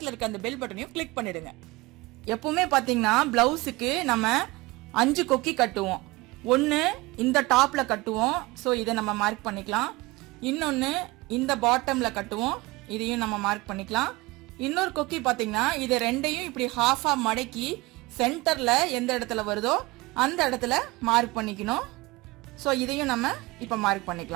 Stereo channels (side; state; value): left; quieter; 22.1 dB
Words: இருக்க அந்த பெல் பட்டனையும் கிளிக் பண்ணிடுங்க. எப்பவுமே பாத்தீங்கன்னா பிளவுஸுக்கு நம்ம 5 கொக்கி கட்டுவோம். ஒன்னு இந்த டாப்ல கட்டுவோம். ஸோ இதை நம்ம மார்க் பண்ணிக்கலாம். இன்னொன்னு இந்த பாட்டம்ல கட்டுவோம். இதையும் நம்ம மார்க் பண்ணிக்கலாம். இன்னொரு கொக்கி பாத்தீங்கன்னா இது ரெண்டையும் இப்படி ஹாஃபா மடக்கி சென்டர்ல எந்த இடத்துல வருதோ அந்த இடத்துல மார்க் பண்ணிக்கணும். ஸோ இதையும் நம்ம இப்ப மார்க்